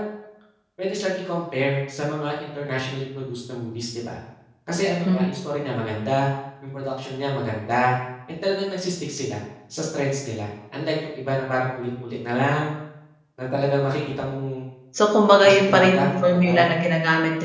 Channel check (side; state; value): both; identical; correlation 1.00